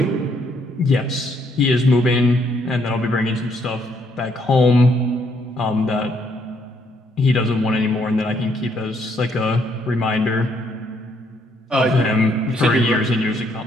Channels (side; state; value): both; normal; correlation 0.71